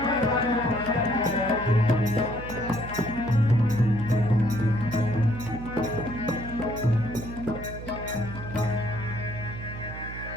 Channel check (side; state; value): right; noise; hum, 10 dB below the sound